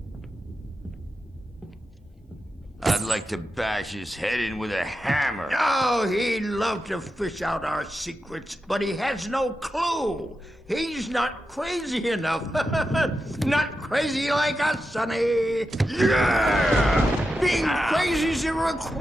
I'd like to bash his head in with a hammer. Oh, he'd love to fish out our secrets, but he has no clue. He's not crazy enough. Not crazy like us, Sonny. Yeah! Being crazy's a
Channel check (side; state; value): both; normal; correlation 0.89